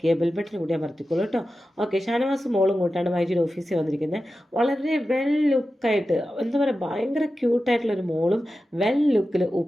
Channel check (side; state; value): both; normal; correlation 0.93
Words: ചെയ്യുക, ബെൽ ബട്ടൺ കൂടി അമർത്തിക്കോളൂ കേട്ടോ. ഓക്കെ, ഷാനവാസ് മോളും കൂട്ടാണ് മൈജിയുടെ ഓഫീസിൽ വന്നിരിക്കുന്നത്. വളരെ വെൽ ലുക്കായിട്ട്, എന്താ പറയുക, ഭയങ്കര ക്യൂട്ടായിട്ടുള്ളൊരു മോളും വെൽ ലുക്കിൽ